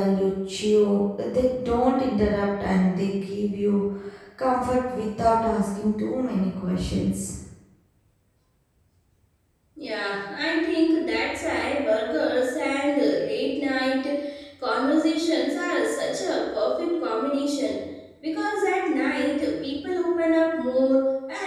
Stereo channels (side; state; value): both; identical; correlation 1.00